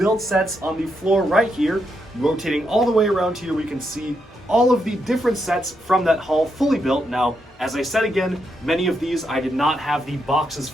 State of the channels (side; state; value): both; normal; correlation 0.81